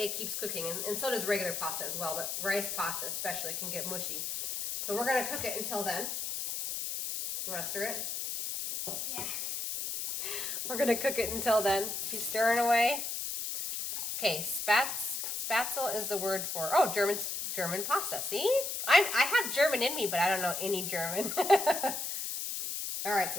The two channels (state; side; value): noise; left; hiss, 3 dB below the sound